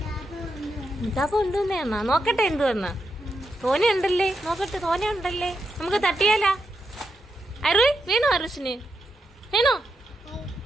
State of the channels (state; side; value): normal; both; correlation 0.84